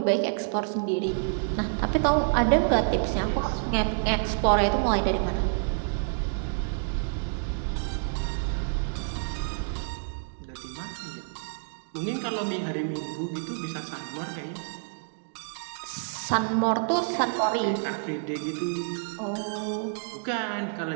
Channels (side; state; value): left; silent; digital silence